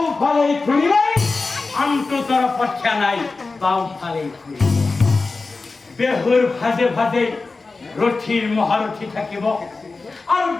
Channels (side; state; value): right; quieter; 3.9 dB